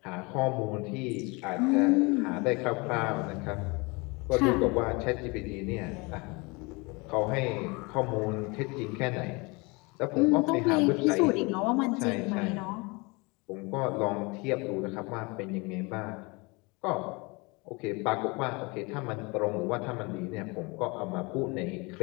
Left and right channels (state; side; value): quieter; right; 27.2 dB